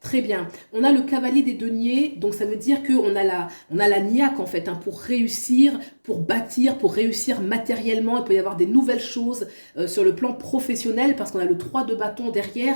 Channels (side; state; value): both; inverted; correlation -1.00